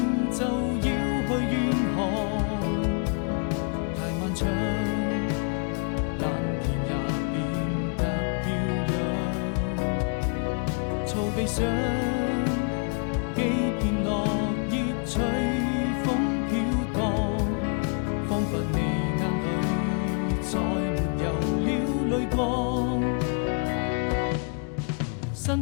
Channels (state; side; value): quieter; right; 39.8 dB